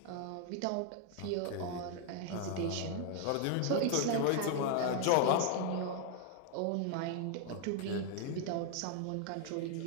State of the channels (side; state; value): both; different; correlation 0.00